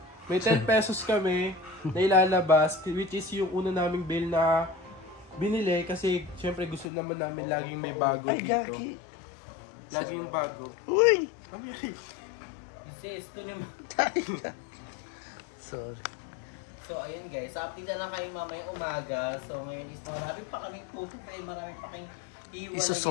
May 10 pesos kami na ilalabas, which is yung una naming bill na binili kasi syempre gusto naman namin laging may bago dito. Laging bago. Uy! sis, ito naman. Sorry. So, ayun guys. Update na lang kayo mamayang umaga. So, ngayon is marami pa kaming tutupain. Marami pa kayong iiwalay.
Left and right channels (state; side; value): drops out; right; at 6.9 s